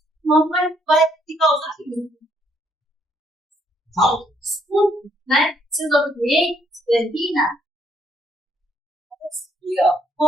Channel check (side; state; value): both; normal; correlation 0.69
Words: não vai te causar isso. Estudo, né? Desobedientes, termina.